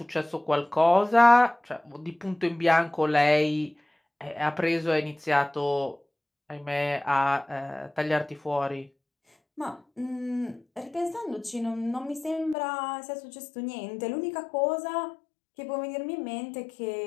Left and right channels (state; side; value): drops out; right; at 12.6 s